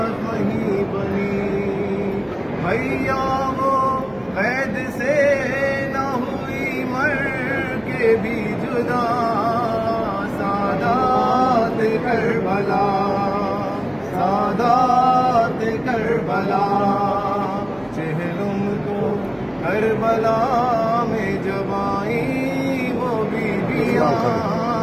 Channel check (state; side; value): noise; right; hum, 27 dB below the sound